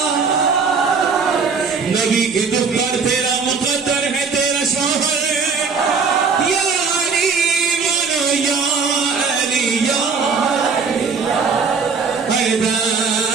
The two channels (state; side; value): quieter; left; 5.1 dB